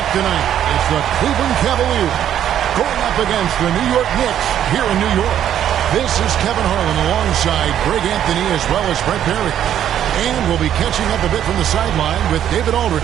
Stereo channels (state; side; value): quieter; left; 10.4 dB